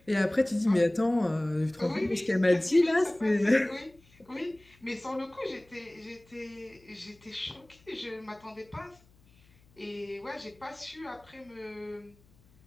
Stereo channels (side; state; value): left; noise; hum, 30 dB below the sound